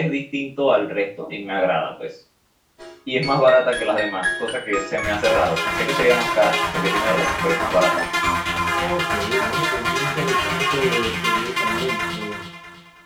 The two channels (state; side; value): identical; both; correlation 1.00